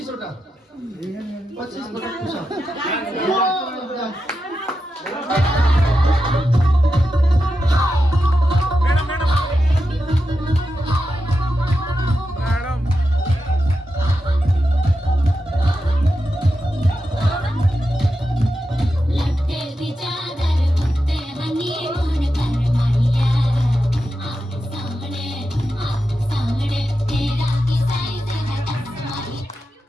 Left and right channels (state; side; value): normal; both; correlation 0.89